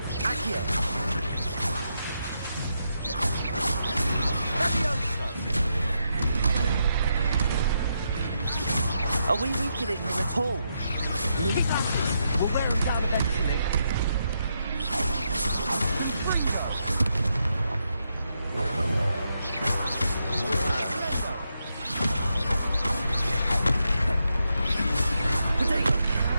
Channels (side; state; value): both; inverted; correlation -0.82